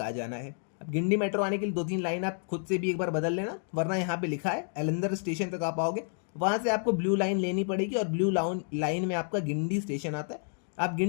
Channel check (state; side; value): silent; right; 55 dB below the other